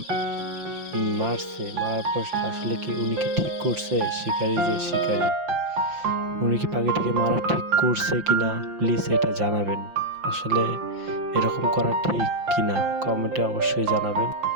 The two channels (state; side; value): late; left; 5.7 ms